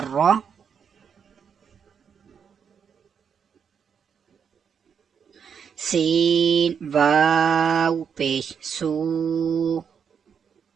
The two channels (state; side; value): quieter; left; 7.1 dB